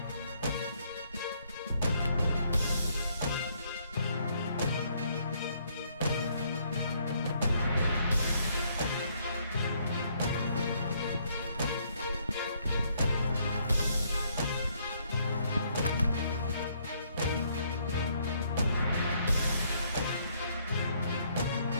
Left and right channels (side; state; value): both; inverted; correlation -0.69